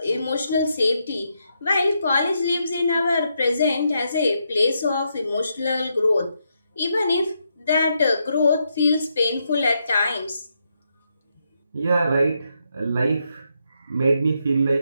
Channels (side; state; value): both; inverted; correlation -0.80